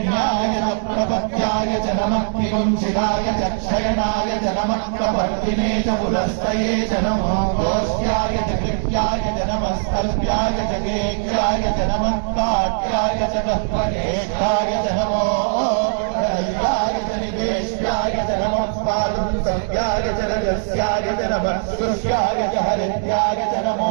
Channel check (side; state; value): left; silent; digital silence